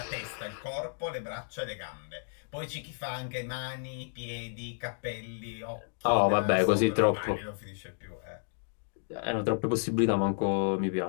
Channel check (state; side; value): silent; right; digital silence